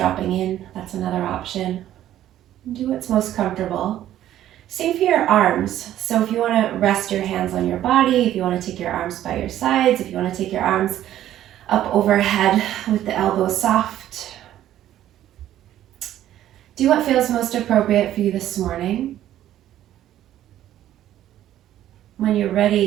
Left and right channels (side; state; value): left; quieter; 12.4 dB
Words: in. That's another option. Do what's most comfortable. Same for your arms. So if you want to rest your hands on your body, if you want to take your arms by your sides, if you want to take your arms up overhead with the elbows soft. Do what feels most appropriate for you this morning. When you're